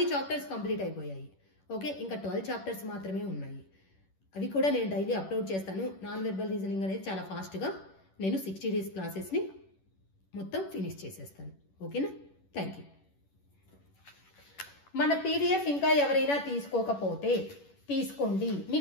చాప్టర్స్ కంప్లీట్ అయిపోయాయి. ఓకే, ఇంకా 12 చాప్టర్స్ మాత్రమే ఉన్నాయి. అవి కూడా నేను డైలీ అప్లోడ్ చేస్తాను. నాన్ వెర్బల్ రీజనింగ్ అనేది చాలా ఫాస్ట్గా నేను 60 డేస్ క్లాసెస్ని మొత్తం ఫినిష్ చేసేస్తాను. ఓకేనా, థ్యాంక్ యూ. మన పీడిఎఫ్ ఇంకా ఎవరైనా తీసుకోకపోతే తీసుకోండి,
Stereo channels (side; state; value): right; late; 11 ms